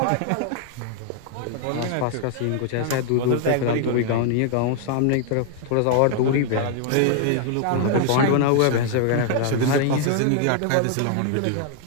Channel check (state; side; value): different; both; correlation 0.00